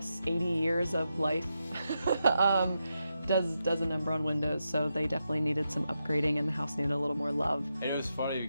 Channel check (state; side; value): inverted; both; correlation -0.86